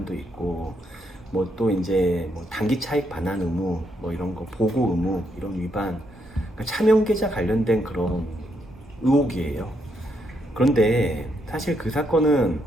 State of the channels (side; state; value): both; normal; correlation 0.77